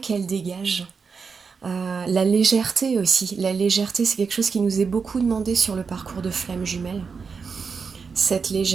dégagent. La légèreté aussi. La légèreté, c'est quelque chose qui nous est beaucoup demandé sur le parcours de flamme jumelle. Cette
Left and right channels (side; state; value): left; quieter; 5.4 dB